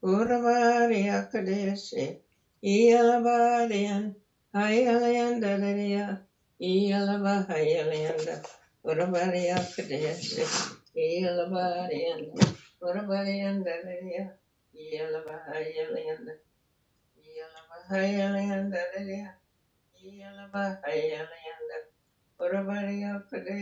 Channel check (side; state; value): both; identical; correlation 1.00